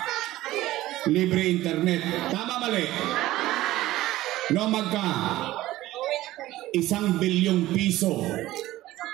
libre internet. Tama mali? No, magka 1 bilyong piso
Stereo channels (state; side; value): quieter; left; 16.1 dB